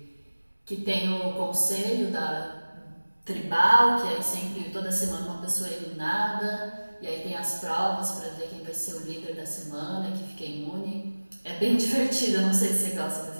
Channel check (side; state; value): both; inverted; correlation -1.00